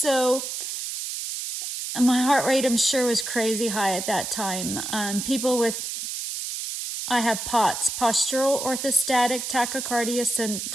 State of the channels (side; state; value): right; noise; hiss, 5 dB below the sound